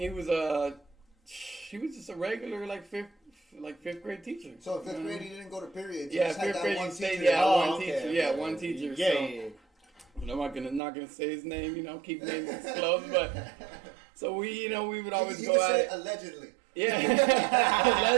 was just a regular, like, fifth grade teacher. So in 5th grade, he didn't go to periods. He Yeah, just had 5th that grade, one he stayed, teacher. yeah, Oh, one okay, teacher, okay, yeah, okay. one teacher, Yeah, so. yeah. I'm not gonna say his name, you know, keep names disclosed, but so we would always You go can at say it. allegedly. Yeah,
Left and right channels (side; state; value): left; drops out; at 10.8 s